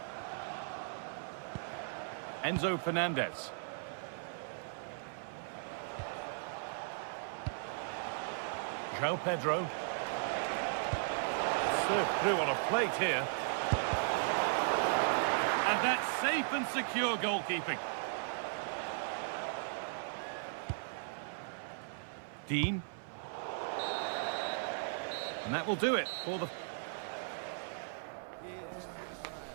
Enzo Fernandez. João Pedro. Served through on a plate here. And that's safe and secure goalkeeping. Dean. And that will do it for the...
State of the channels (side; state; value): left; silent; 53 dB below the other